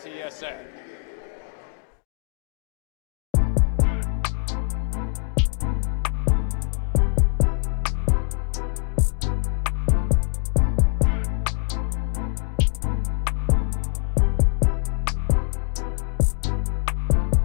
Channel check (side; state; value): right; quieter; 38.0 dB